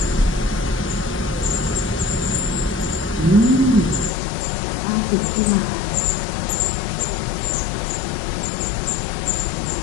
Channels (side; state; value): right; drops out; at 4.1 s